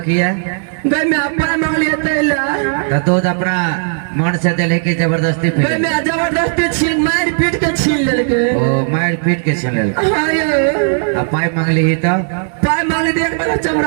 किया गई में अपना मांगलिए तैला तो दूध अपना मन से दिले की जबरदस्ती पी गई लेल में जबरदस्ती छीन मार पीट के छीन लेलके ओ मार पीट के छीन लेल हाँ यो अब पाई मांगली ही तो पाय मांगली देख मेरा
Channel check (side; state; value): left; silent; digital silence